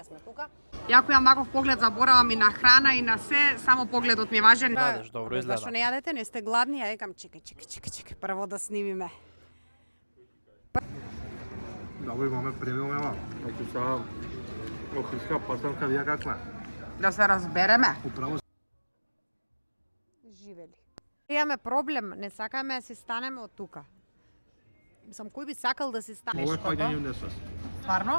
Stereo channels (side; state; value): both; inverted; correlation -1.00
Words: сме тука. Јако имам ваков поглед, заборавам и на храна и на се, само погледот ми е важен. Јадеш, добро изгледа. Зашто не јадете, не сте гладни, ја викам чекај, прво да снимиме. Да го имаме премиум ева. Значи сега охридска пастрамка вија каква? Да се разбереме. Управо Живели. Имаме проблем, не сакаме да си станеме од тука. Мислам, кој би сакал да си стане? ова е паѓање у несвест.